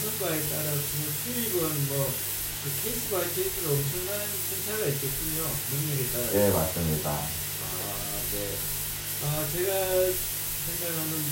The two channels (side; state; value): both; identical; correlation 1.00